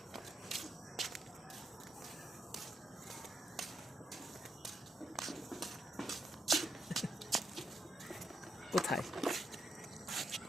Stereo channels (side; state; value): both; normal; correlation 0.80